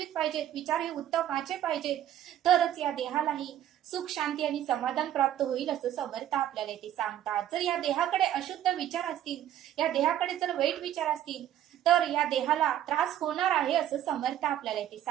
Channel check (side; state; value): left; quieter; 11.5 dB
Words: पाहिजेत, विचार हे उत्तमाचे पाहिजेत, तरच या देहालाही सुख शांती आणि समाधान प्राप्त होईल असं समर्थ आपल्याला ते सांगतात. जर या देहाकडे अशुद्ध विचार असतील, या देहाकडे जर वाईट विचार असतील, तर या देहाला त्रास होणार आहे असं समर्थ आपल्याला ते